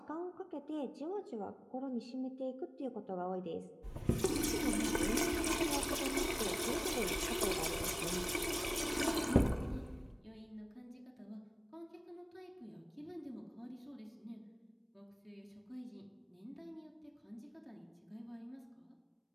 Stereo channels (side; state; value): both; identical; correlation 1.00